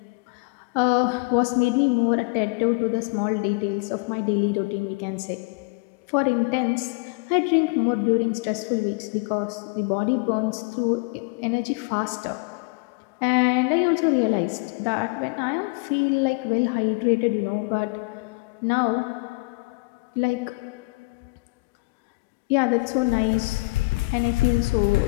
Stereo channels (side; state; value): right; quieter; 27.1 dB